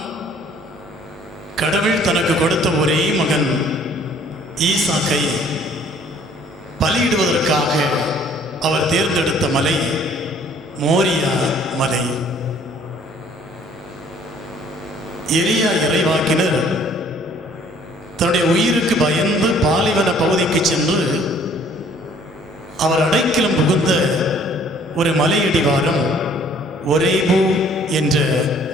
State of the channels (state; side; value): normal; both; correlation 0.57